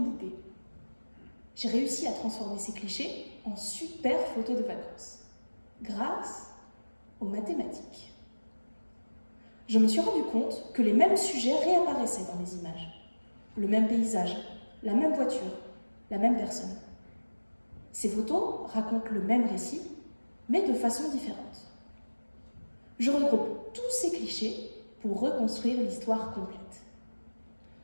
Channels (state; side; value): inverted; both; correlation -1.00